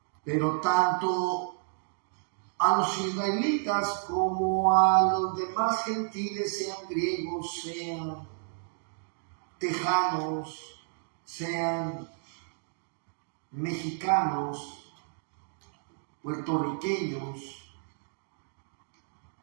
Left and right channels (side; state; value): left; silent; digital silence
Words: Pero tanto a los israelitas como a los demás gentiles, sean griegos, sean tejanos, sean mexicanos, puertorriqueños,